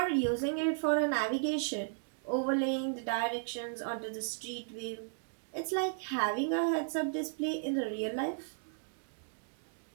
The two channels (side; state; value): left; silent; digital silence